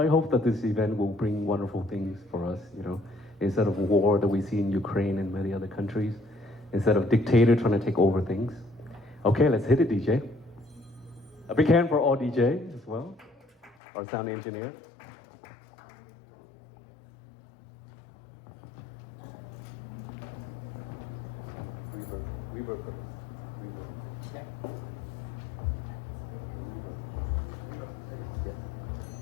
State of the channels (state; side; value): drops out; right; at 13.8 s